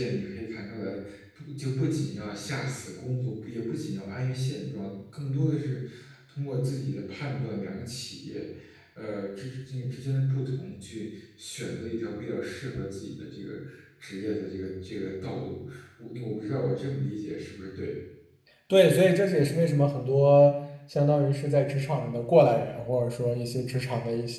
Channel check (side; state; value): both; identical; correlation 1.00